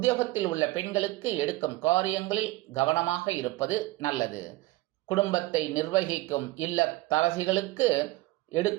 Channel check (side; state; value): left; quieter; 19.0 dB